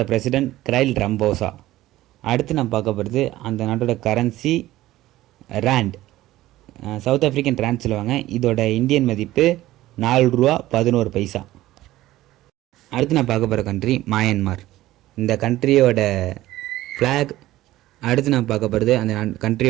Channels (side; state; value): left; quieter; 15.9 dB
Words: பிரசிடெண்ட் கிரைல் ரம்போசா. அடுத்து நம்ம பார்க்க போகிறது அந்த நாட்டோட currency rand. South African rand சொல்லுவாங்க. இதோட இந்தியன் மதிப்பு 4 ரூபா 11 பைசா. அடுத்து நான் பார்க்க போகிற கண்ட்ரி மயன்மார். இந்த கண்ட்ரியோட ஃப்ளாக். அடுத்து நான் பார்க்க போகிறது அந்த